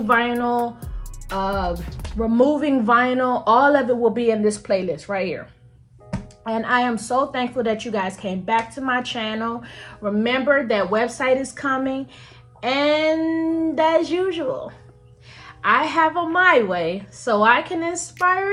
vinyl, removing vinyl. All of it will be in this playlist right here. And I am so thankful that you guys came back to my channel. Remember that website is coming, and as usual, I have a my way so I can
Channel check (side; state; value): both; identical; correlation 1.00